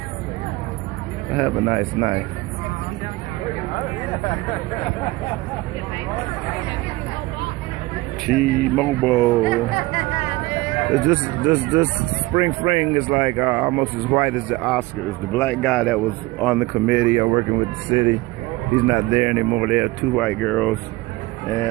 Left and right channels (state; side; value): quieter; left; 20.7 dB